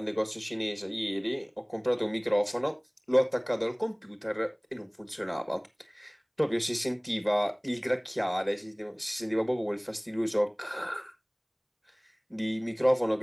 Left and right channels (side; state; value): both; identical; correlation 1.00